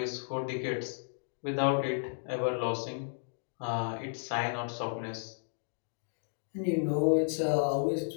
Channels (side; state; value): right; silent; digital silence